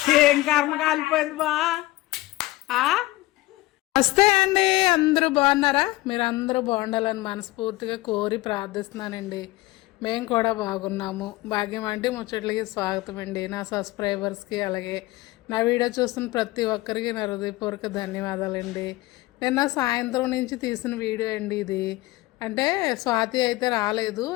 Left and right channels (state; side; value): quieter; right; 19.2 dB